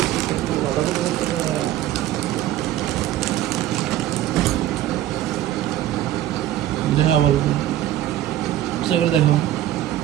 দেখা ভালো করে দেখো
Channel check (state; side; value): quieter; left; 13.1 dB